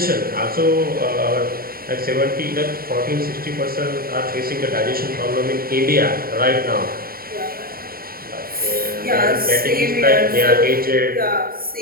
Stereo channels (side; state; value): left; late; 0.43 ms